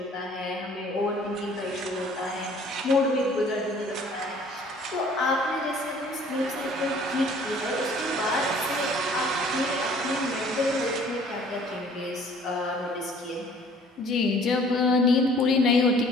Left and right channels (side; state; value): both; normal; correlation 0.54